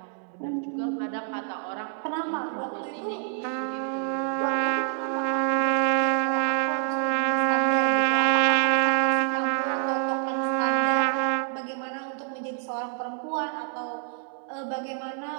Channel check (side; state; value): left; silent; 60 dB below the other